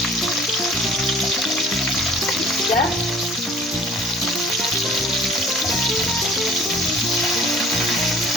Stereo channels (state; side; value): normal; both; correlation 0.51